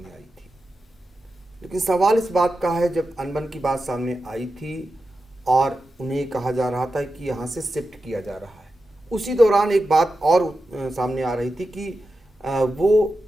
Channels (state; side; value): normal; both; correlation 0.90